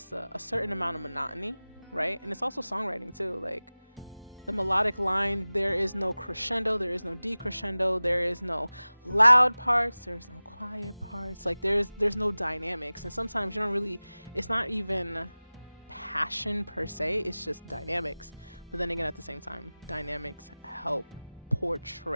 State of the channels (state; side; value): inverted; both; correlation -0.98